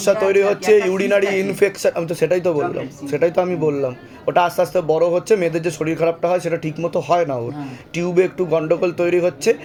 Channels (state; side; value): identical; both; correlation 1.00